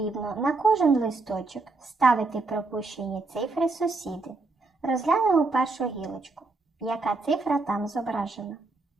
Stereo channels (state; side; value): quieter; left; 3.6 dB